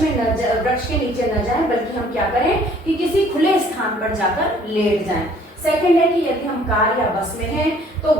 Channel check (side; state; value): both; normal; correlation 0.58